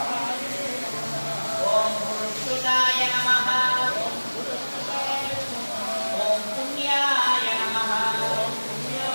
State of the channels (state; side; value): inverted; both; correlation -1.00